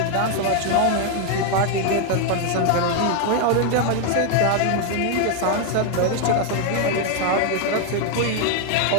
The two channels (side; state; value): both; different; correlation 0.00